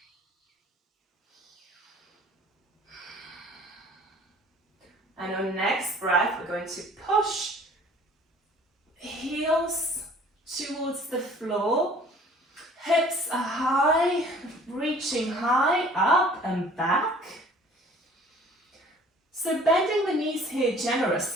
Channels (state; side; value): normal; both; correlation 0.51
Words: And on next breath, we're going to push heels towards the floor. Hips are high, reaching high, up and back. So bending the knees here